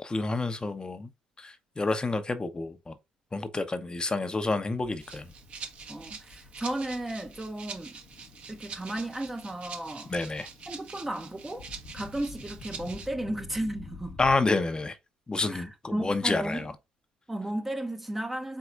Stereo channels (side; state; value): both; normal; correlation 0.86